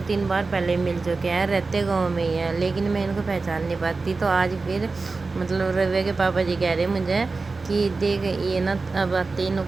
बार पहले मिल चुके हैं, रहते गांव में ही है, लेकिन मैं इनको पहचान नहीं पाती। तो आज फिर मतलब रवि के पापा जी कह रहे मुझे कि देख ये ना अब आते इन्हों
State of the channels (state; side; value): quieter; left; 3.9 dB